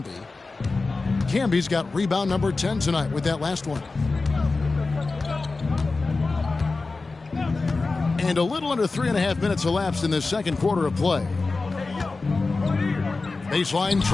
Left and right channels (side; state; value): right; quieter; 3.7 dB